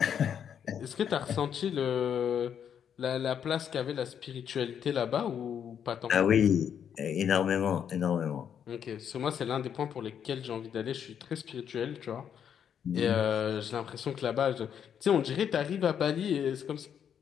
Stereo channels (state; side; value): quieter; right; 8.4 dB